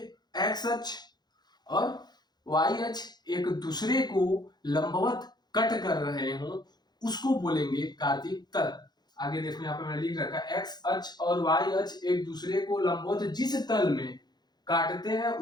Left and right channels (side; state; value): right; late; 0.20 ms